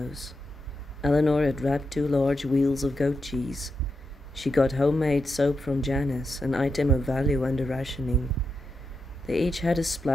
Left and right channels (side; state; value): both; normal; correlation 0.86